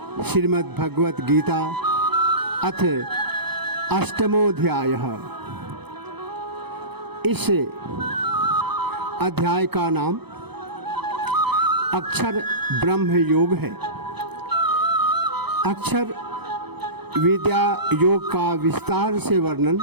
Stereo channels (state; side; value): late; left; 0.98 ms